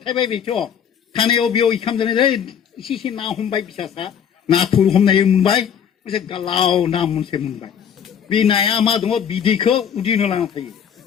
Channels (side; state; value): right; quieter; 8.2 dB